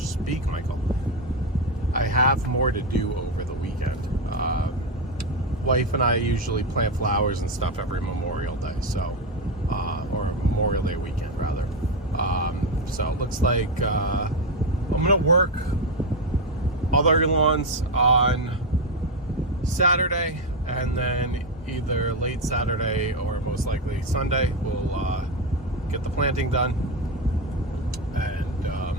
speak, Michael. I have more to do over the weekend. Wife and I usually plant flowers and stuff every Memorial Day, so or Memorial Day weekend rather. So it looks like I'm gonna work other lawns on Saturday, and then either late Saturday or most likely Sunday we'll get the planting done, and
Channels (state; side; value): normal; both; correlation 0.10